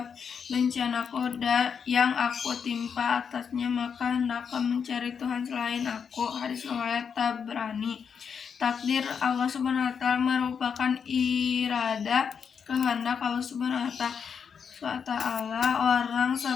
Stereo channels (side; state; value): right; quieter; 6.7 dB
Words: bencanaku yang aku timpa atasnya, maka hendaklah mencari Tuhan selain aku. Hadis riwayat Tabrani. Takdir Allah Subhanahu wa taala merupakan irada, kehendak Allah Subhanahu wa taala orang.